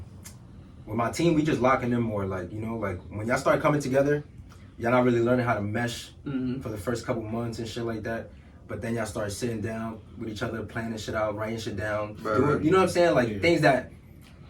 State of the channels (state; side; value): identical; both; correlation 1.00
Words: with my team, we just locking in more. Like, you know, like when y'all start coming together, y'all not really learning how to mesh for the first couple months and shit like that. but then y'all start sitting down with each other, planning shit out, writing shit down. Right. You know what I'm saying? Like things that